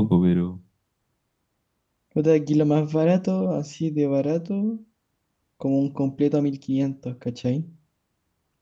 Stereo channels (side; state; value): both; identical; correlation 1.00